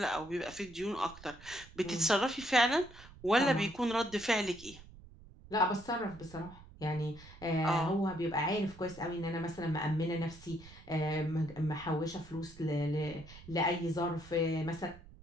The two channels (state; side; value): noise; right; rumble, 19 dB below the sound